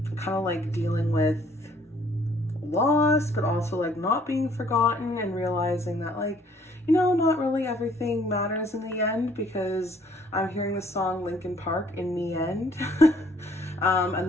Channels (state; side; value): normal; both; correlation 0.61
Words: of like dealing with loss, but also like not being forgotten and realizing that not really everything matters in the end, because I'm hearing the song Linkin Park in the end.